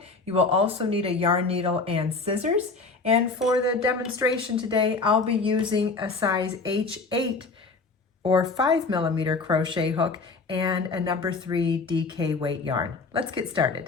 You will also need a yarn needle and scissors. And for the demonstration today, I'll be using a size H8 or 5mm crochet hook and a number 3 DK weight yarn. Let's get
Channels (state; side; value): quieter; right; 4.1 dB